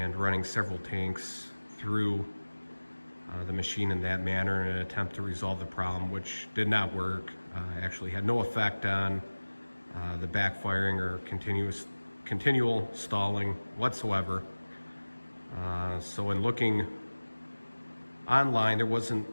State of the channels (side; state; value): both; inverted; correlation -1.00